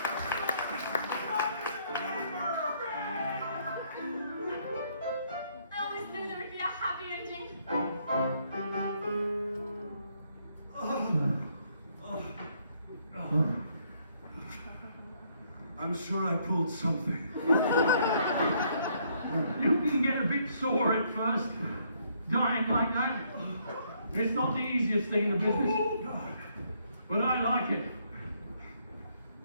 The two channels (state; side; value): inverted; both; correlation -0.70